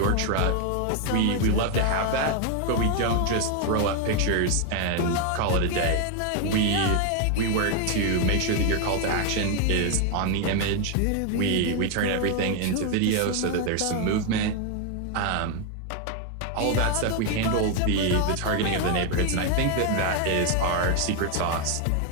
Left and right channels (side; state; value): both; different; correlation 0.01